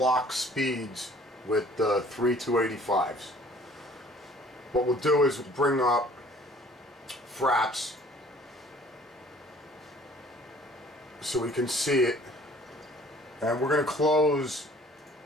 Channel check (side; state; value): both; normal; correlation 0.54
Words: speeds with the 3285s. What we'll do is bring up Fraps so we can see it, and we're going to close